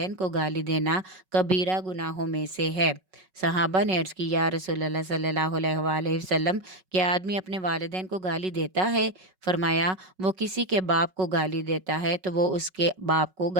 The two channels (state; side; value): late; left; 5.4 ms